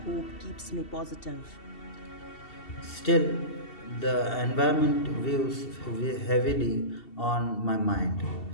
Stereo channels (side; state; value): right; late; 2.7 ms